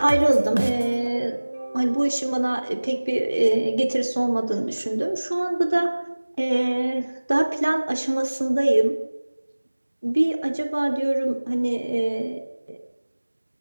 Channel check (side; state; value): both; inverted; correlation -1.00